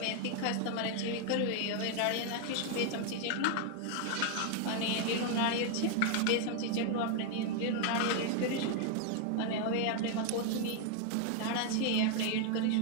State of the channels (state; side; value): different; both; correlation 0.00